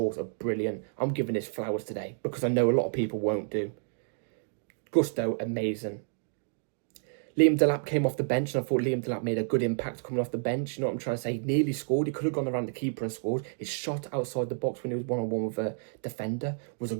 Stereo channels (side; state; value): left; silent; digital silence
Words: of brilliant. I'm giving his flowers today because I know a lot of people won't do. Gusto, amazing. Liam Delap came off the bench, and I thought Liam Delap made a good impact coming off the bench. You know what I'm trying to say? He nearly scored. He could have gone around the keeper and scored. His shot outside the box when he was one-on-one with a defender was a